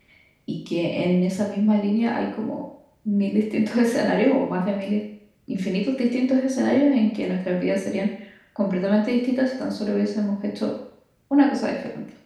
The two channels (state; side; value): identical; both; correlation 1.00